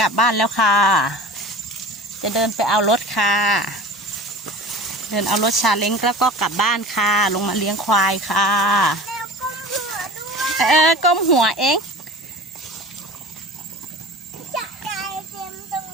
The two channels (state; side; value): normal; both; correlation 0.37